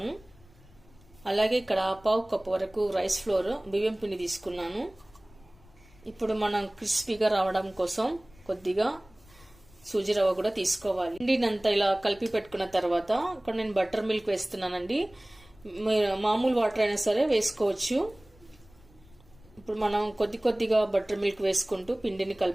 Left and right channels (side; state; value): left; noise; rumble, 26 dB below the sound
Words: అలాగే ఇక్కడ 1/2 కప్పు వరకు రైస్ ఫ్లోర్ బియ్యం పిండి తీసుకున్నాను. ఇప్పుడు మనం క్రిస్పీగా రావడం కోసం కొద్దిగా సూజీ రవ్వ కూడా తీసుకోవాలి. పిండినంతా ఇలా కలిపి పెట్టుకున్న తర్వాత ఇక్కడ నేను బటర్ మిల్క్ వేస్తున్నానండి. మామూలు వాటర్ అయినా సరే వేసుకోవచ్చు. ఇప్పుడు మనం కొద్దిగా బటర్ మిల్క్ వేసుకుంటూ పిండిని